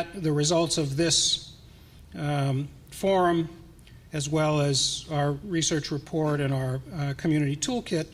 the results of this forum, as well as our research report and our community toolkit,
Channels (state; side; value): identical; both; correlation 1.00